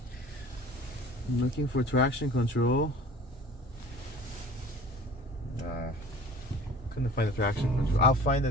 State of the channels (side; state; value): both; normal; correlation 0.44